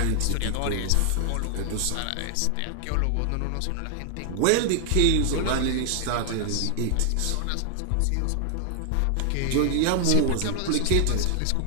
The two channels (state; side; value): different; both; correlation 0.00